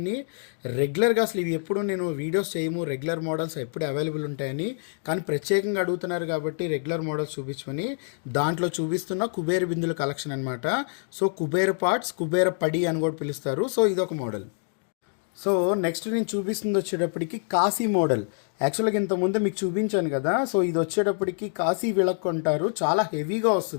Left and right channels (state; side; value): silent; right; 60 dB below the other